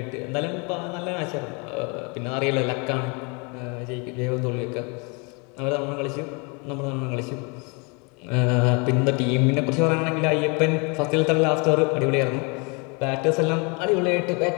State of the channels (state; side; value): quieter; right; 31.8 dB